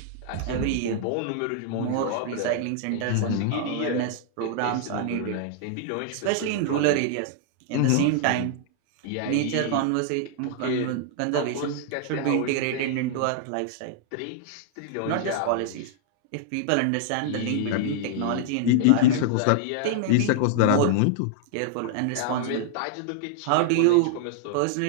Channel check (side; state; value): both; different; correlation -0.01